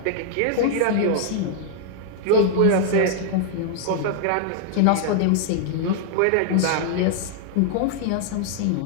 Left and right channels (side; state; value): both; different; correlation -0.01